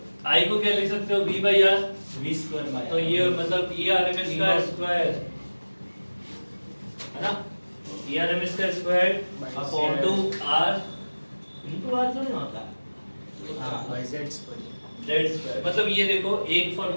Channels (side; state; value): both; inverted; correlation -1.00